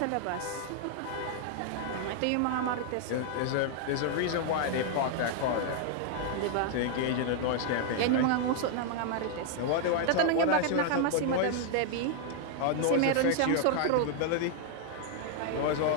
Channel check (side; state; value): both; different; correlation 0.00